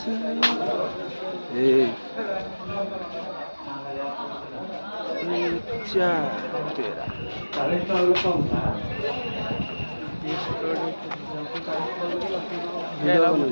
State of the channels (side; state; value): both; inverted; correlation -1.00